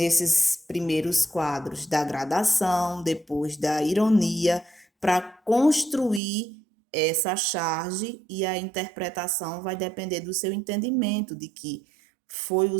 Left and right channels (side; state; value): left; drops out; at 6.2 s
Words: primeiros quadros da gradação, depois da ironia, para construir essa charge, e a interpretação vai depender do seu entendimento de que foi